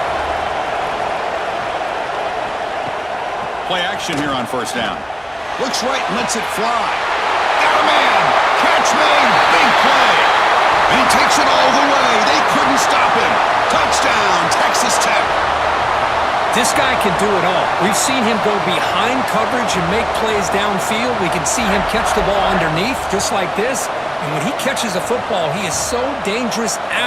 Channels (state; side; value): identical; both; correlation 1.00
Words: Play action here on 1st down. Looks right and lets it fly. Got a man! Catch made! Big play! And he takes it all the way. They couldn't stop him. Touchdown, Texas Tech. This guy can do it all. We've seen him go behind coverage and make plays downfield. We can see him catch the ball underneath, just like this. And when he catches a football, he is so dangerous